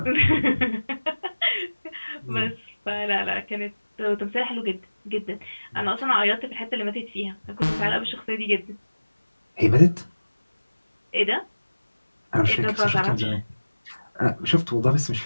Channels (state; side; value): inverted; both; correlation -1.00